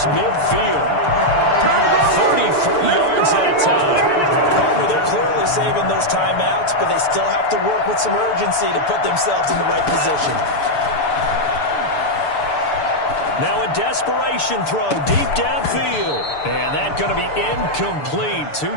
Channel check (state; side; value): late; right; 6.9 ms